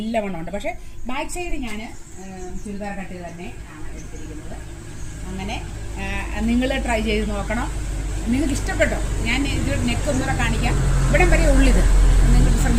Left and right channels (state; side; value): identical; both; correlation 1.00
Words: പക്ഷേ ബാക്ക് സൈഡ് ഞാൻ ചുരിദാർ കട്ട് തന്നെ ആണ് എടുത്തിരിക്കുന്നത്. അങ്ങനെ നിങ്ങൾ ട്രൈ ചെയ്ത് നോക്കണം. നിങ്ങൾക്ക് ഇഷ്ടപ്പെട്ടോ? ഞാൻ ഇത് നെക്ക് ഒന്നുകൂടെ കാണിക്കാം. ഇവിടം വരെ ഉള്ളിത് നിങ്ങൾ